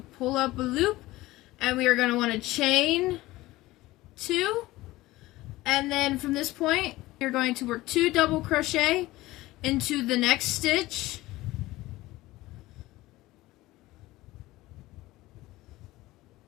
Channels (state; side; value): quieter; right; 18.2 dB